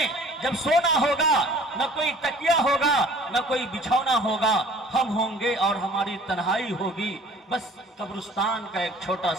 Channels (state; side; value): normal; both; correlation 0.50